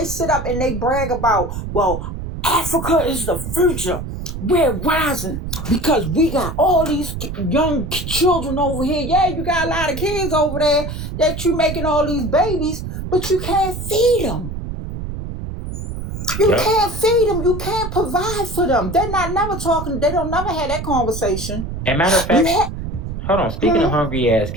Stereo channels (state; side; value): noise; right; rumble, 6 dB below the sound